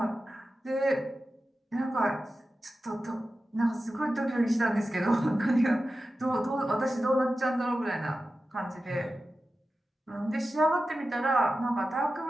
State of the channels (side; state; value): both; normal; correlation 0.93